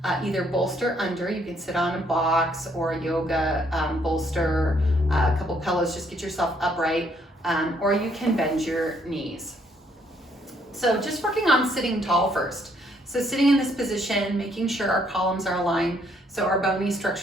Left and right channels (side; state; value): both; normal; correlation 0.68